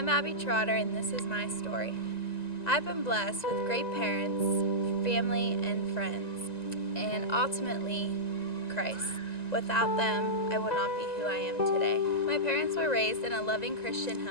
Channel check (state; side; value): late; right; 1.9 ms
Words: Abby Trotter, and this is my story. I've been blessed with great parents, family, and friends, and ultimately, Christ. Without them, I would not be who I am today. My parents were raised in a loving Christian